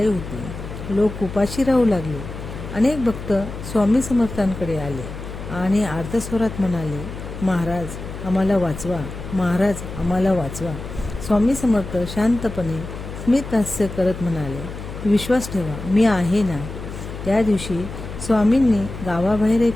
होती. लोक उपाशी राहू लागले. अनेक भक्त स्वामी समर्थांकडे आले आणि आर्तस्वरात म्हणाले, महाराज आम्हाला वाचवा, महाराज आम्हाला वाचवा. स्वामी समर्थ शांतपणे स्मित हास्य करत म्हणाले, विश्वास ठेवा, मी आहे ना. त्या दिवशी स्वामींनी गावाबाहेर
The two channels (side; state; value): left; noise; hum, 10 dB below the sound